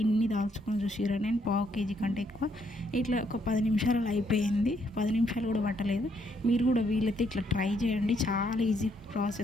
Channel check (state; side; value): normal; both; correlation 0.72